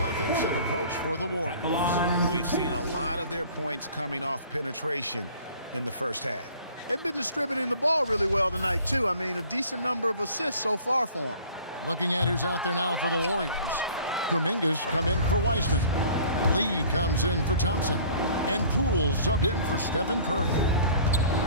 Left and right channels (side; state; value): both; inverted; correlation -0.49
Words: offensive approach for the Warriors? We've seen a lot of their points coming off penetration in the first half. They've been distributing the ball really well tonight, too. I mean, a decent number of assists so far for them. Looking at who's out there now for the Warriors. Kuminga's come in for Wiseman. Lee comes in for Thompson. And Poole subbed in for Stephen Curry.